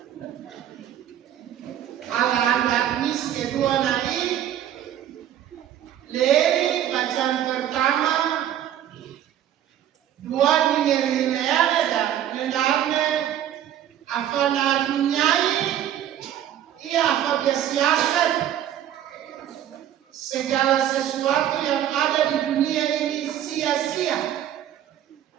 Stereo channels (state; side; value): quieter; left; 11.0 dB